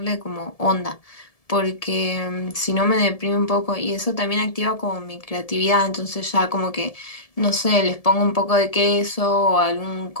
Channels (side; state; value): right; late; 1.7 ms